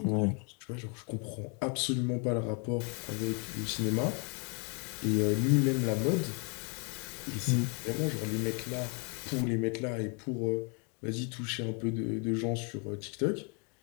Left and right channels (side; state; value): right; quieter; 36.7 dB